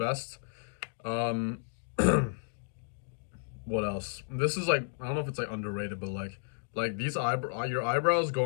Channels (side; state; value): right; silent; digital silence